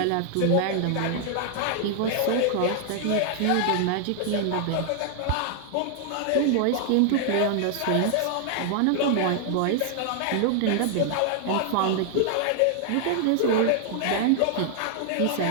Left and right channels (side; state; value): both; different; correlation 0.00